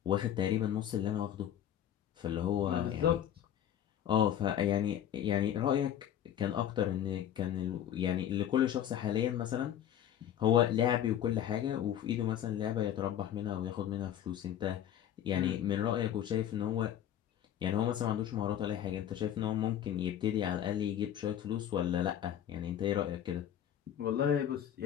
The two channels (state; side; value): quieter; right; 10.5 dB